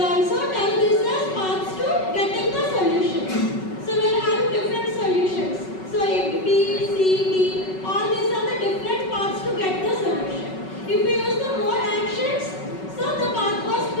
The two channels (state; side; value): late; right; 5.3 ms